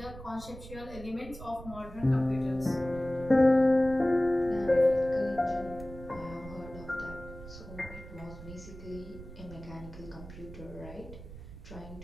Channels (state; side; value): noise; right; rumble, 14 dB below the sound